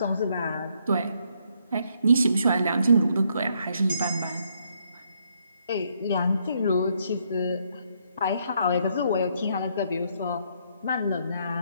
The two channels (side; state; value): both; inverted; correlation -0.72